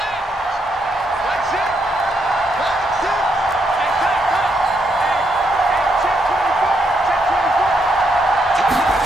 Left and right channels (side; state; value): both; normal; correlation 0.77